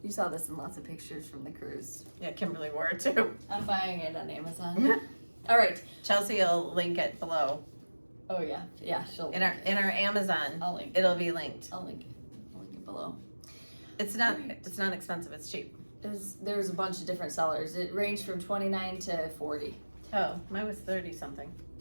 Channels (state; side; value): inverted; both; correlation -1.00